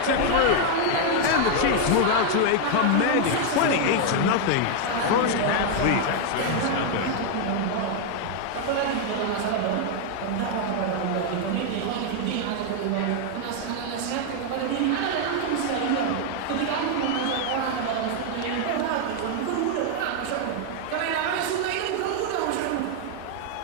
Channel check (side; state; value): both; different; correlation 0.00